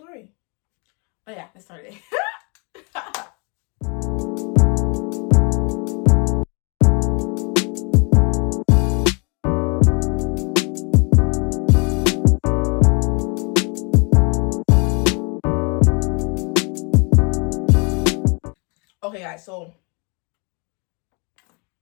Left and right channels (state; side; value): quieter; right; 32.7 dB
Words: yeah, let's start it. Okay, guys, so